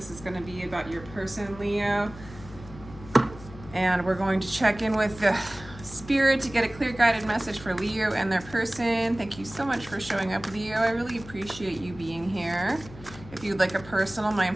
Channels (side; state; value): left; noise; hum, 17 dB below the sound